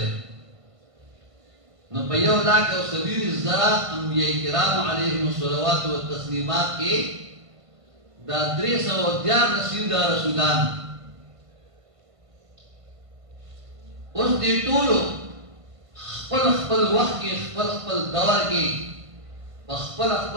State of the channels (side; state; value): left; late; 1.5 ms